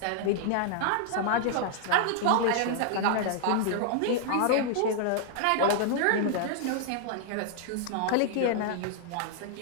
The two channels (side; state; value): both; different; correlation -0.01